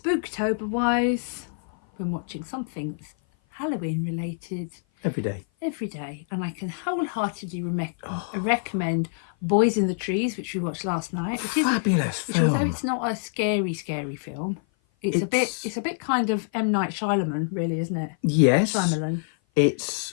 wise, been watching something that's Halloween related every day, and I can wholeheartedly recommend Boys in the Trees, which we watched last night, which is fabulous. Although it's not a scary film, it's a bit kind of M. Night Shyamalan, really, isn't it? Yes. Shyamalan. It's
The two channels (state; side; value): silent; right; 56 dB below the other